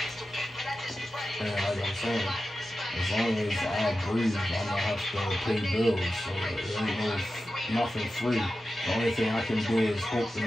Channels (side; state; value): both; normal; correlation 0.92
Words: And like I'm saying, as long as I breathe, I'm gonna have to pay bills. So there ain't nothing free. The only thing I can do is hope to